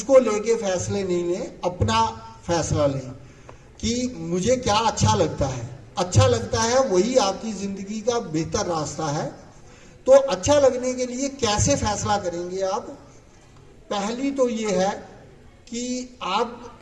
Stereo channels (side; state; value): both; identical; correlation 1.00